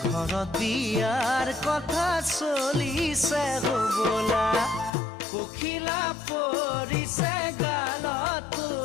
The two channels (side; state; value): right; drops out; at 4.9 s